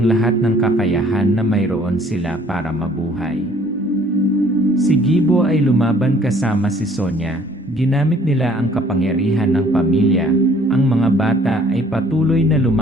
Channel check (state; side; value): normal; both; correlation 0.57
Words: lahat ng kakayahan na mayroon sila para mabuhay. Si Gibo ay lumaban kasama si Sonya, ginamit nila ang kapangyarihan ng pamilya, ang mga bata ay patuloy na